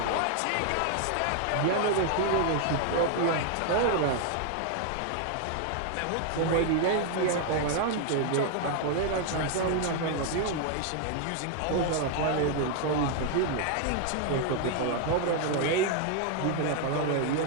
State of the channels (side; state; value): both; different; correlation 0.00